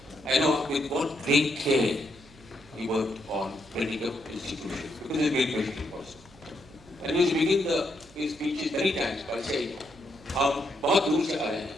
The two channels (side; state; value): right; noise; hum, 25 dB below the sound